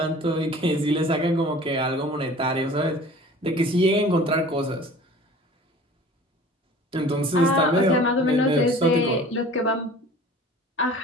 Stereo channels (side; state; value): both; normal; correlation 0.44